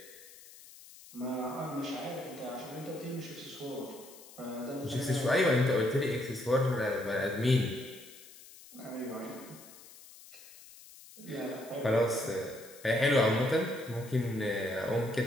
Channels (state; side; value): noise; left; hiss, 20 dB below the sound